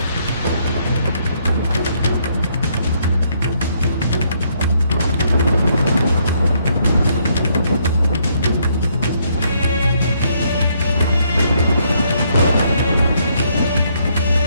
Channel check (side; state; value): both; inverted; correlation -0.71